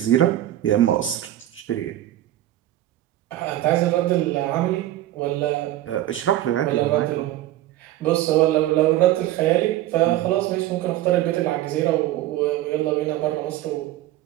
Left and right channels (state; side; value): quieter; left; 14.2 dB